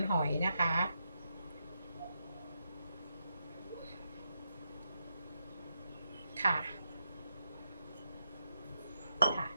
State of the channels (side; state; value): both; inverted; correlation -0.83